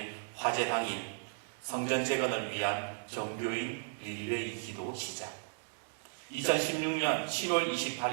화재 당일 성전 재건을 위한 정교인 릴레이 기도 시작. 2016년 7월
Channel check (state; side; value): silent; left; digital silence